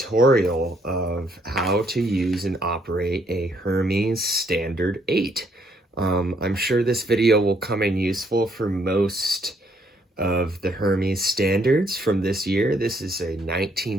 of how to use and operate a Hermes Standard 8. I'm sure this video will come in useful for most of the Hermes standards from this year. This is a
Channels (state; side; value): normal; both; correlation 0.69